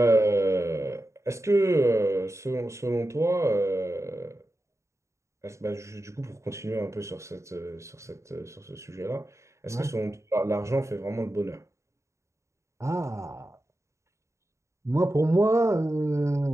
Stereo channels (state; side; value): late; left; 0.14 ms